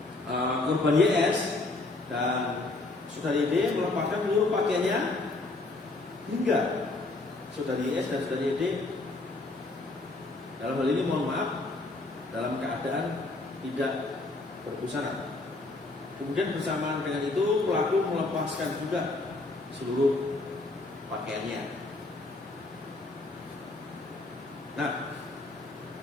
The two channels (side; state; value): right; quieter; 3.1 dB